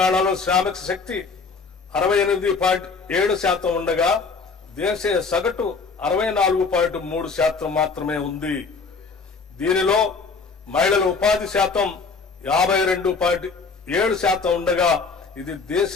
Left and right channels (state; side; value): quieter; right; 4.7 dB